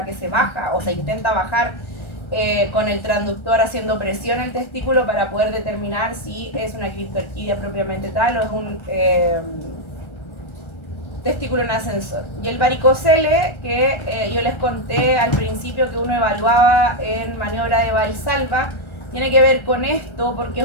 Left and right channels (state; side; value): late; right; 1.3 ms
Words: que se baja o se intenta bajar con el transductor haciendo presión al testículo para poder determinar si es una criptorquidia propiamente tal o es un testículo en ascensor. Y el varicocele, que yo les conté al principio que uno evaluaba en maniobra de Valsalva, tiene que ver con esto porque